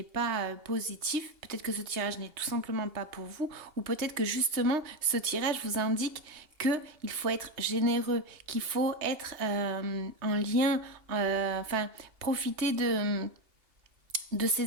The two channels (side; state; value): left; late; 2.8 ms